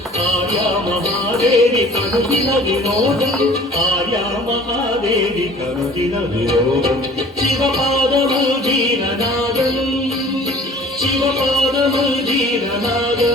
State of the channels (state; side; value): normal; both; correlation 0.48